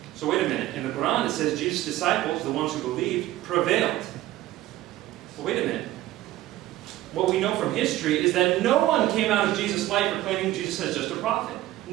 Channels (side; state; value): left; quieter; 15.3 dB